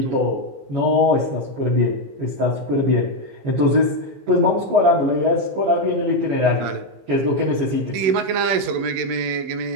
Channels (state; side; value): late; left; 16 ms